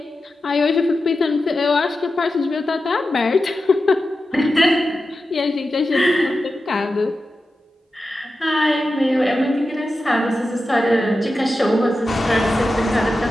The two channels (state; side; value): normal; both; correlation 0.92